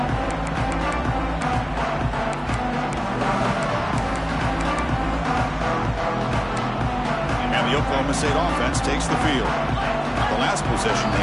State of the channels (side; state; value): both; identical; correlation 1.00